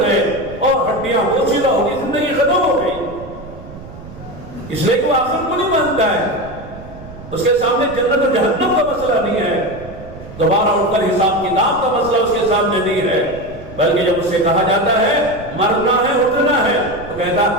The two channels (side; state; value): right; noise; rumble, 16 dB below the sound